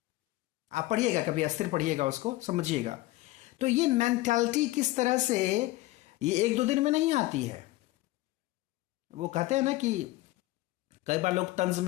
आप पढ़िएगा कभी, अस्थिर पढ़िएगा, उसको समझिएगा। तो ये मेंटालिटी किस तरह से, ये एक दो दिन में नहीं आती है। वो कहते हैं ना कि कई बार लोग तंज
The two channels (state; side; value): quieter; right; 18.5 dB